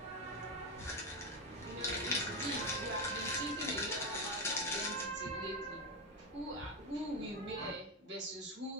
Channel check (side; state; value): both; normal; correlation 0.12